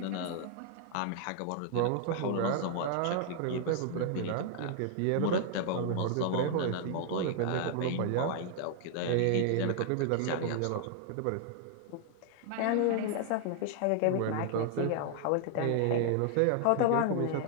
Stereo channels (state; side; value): different; both; correlation 0.00